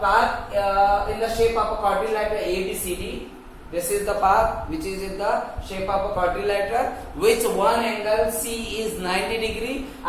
quadrilateral ABCD. This is the path which is in the shape of a quadrilateral, which one angle C is 90 degree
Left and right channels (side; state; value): both; identical; correlation 1.00